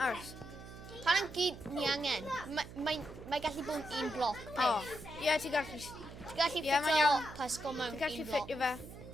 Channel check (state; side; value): noise; right; hum, 14 dB below the sound